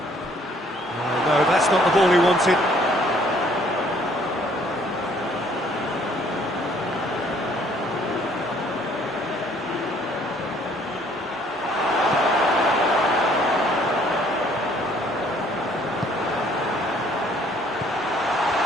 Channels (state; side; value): normal; both; correlation 0.61